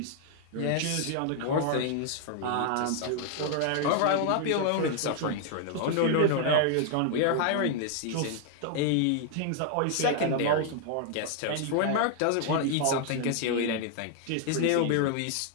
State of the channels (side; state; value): both; different; correlation 0.00